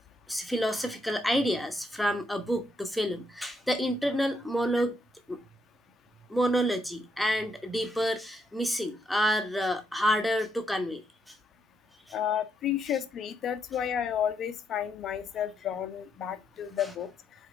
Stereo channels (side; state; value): both; normal; correlation 0.77